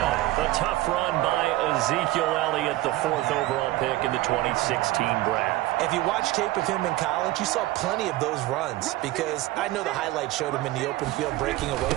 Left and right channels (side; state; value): left; quieter; 17.3 dB